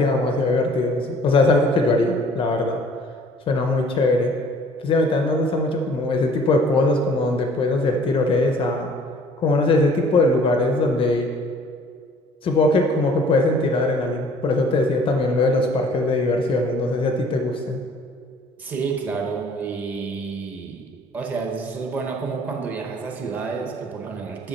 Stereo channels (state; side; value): normal; both; correlation 0.54